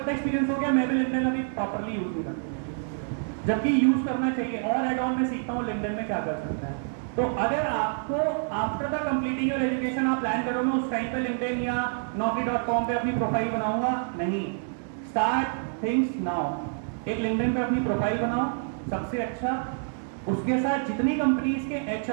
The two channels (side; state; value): left; silent; 56 dB below the other